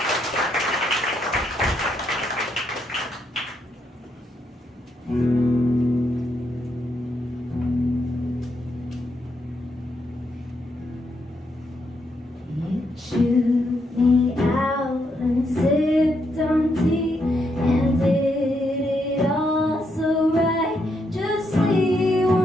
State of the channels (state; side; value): normal; both; correlation 0.78